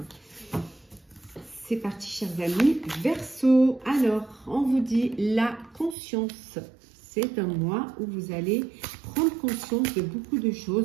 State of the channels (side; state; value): left; drops out; at 6.0 s